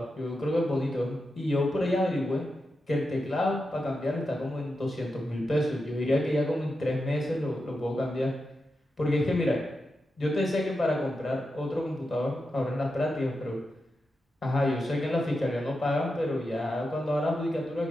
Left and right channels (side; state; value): both; normal; correlation 0.88